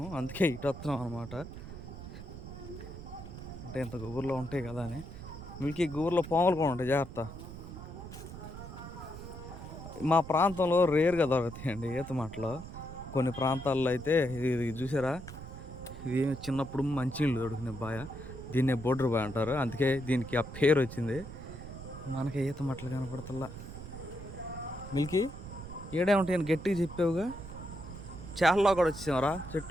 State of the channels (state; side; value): noise; right; rumble, 12 dB below the sound